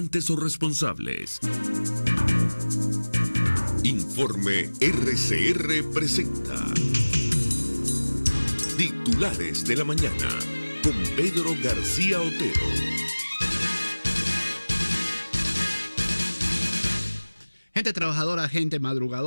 o responsables. Informe RCR presenta Titulares de la Mañana con Pedro García Otero. Gente trabajadora, gente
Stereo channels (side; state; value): both; inverted; correlation -1.00